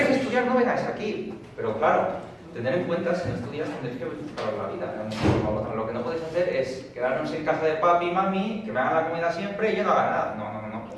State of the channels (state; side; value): identical; both; correlation 1.00